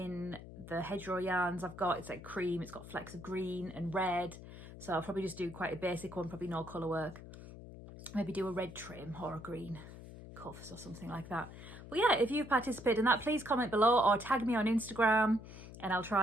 the Hedgerow Yarns I've got. It's like cream, it's got flecks of green and red. So I'll probably just do quite a basic one, probably no colour work. Maybe do a red trim or a green cuffs or something like that. But yeah, if you've participated in that, please comment below or tag me on Instagram, and I'll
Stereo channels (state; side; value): noise; left; hum, 14 dB below the sound